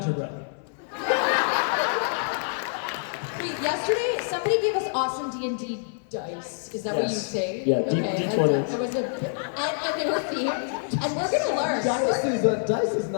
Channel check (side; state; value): right; silent; 61 dB below the other